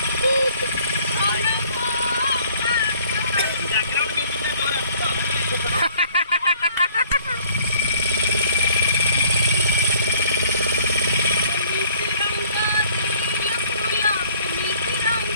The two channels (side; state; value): both; inverted; correlation -0.56